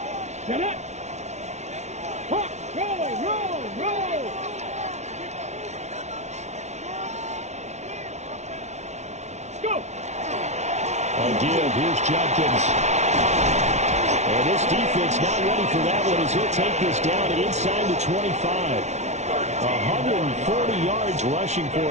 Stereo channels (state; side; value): late; left; 0.32 ms